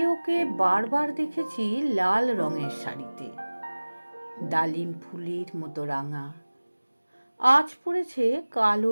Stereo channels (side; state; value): both; inverted; correlation -1.00